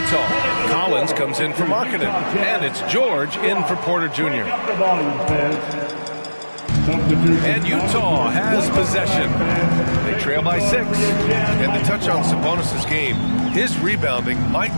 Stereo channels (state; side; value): inverted; both; correlation -1.00